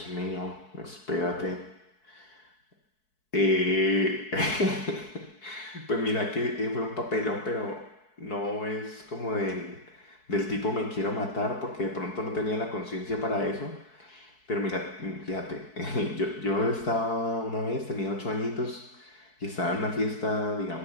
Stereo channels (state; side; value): late; right; 4.6 ms